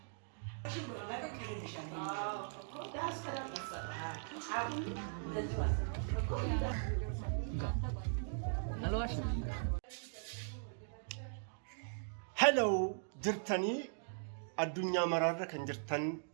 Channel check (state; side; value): silent; left; digital silence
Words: Hello, jirtanii addunyaa maraarra kan jirtan